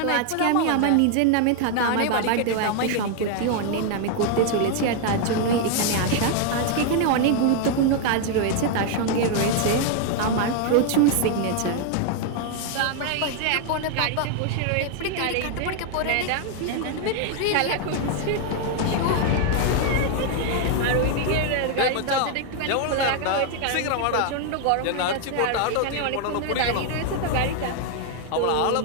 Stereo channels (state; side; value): different; both; correlation 0.00